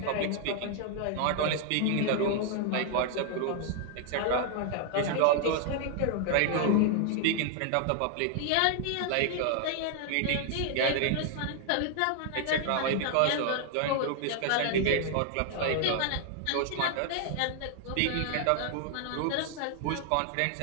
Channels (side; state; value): both; different; correlation 0.00